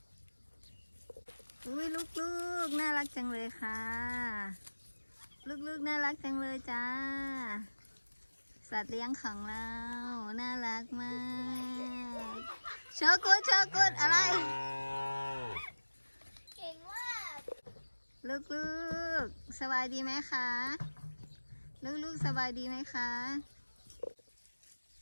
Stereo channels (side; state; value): both; inverted; correlation -1.00